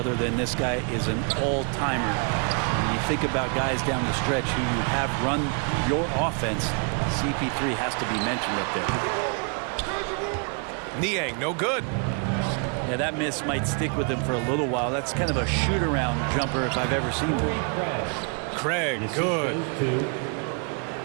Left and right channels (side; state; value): left; quieter; 39.1 dB